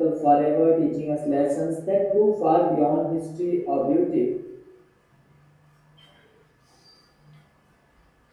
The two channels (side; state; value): both; identical; correlation 1.00